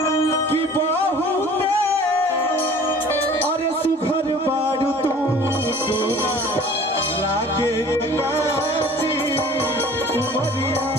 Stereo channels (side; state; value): both; normal; correlation 0.48